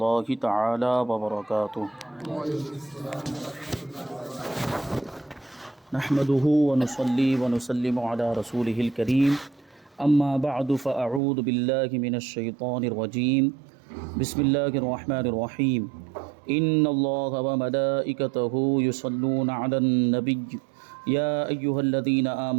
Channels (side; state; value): left; drops out; at 11.2 s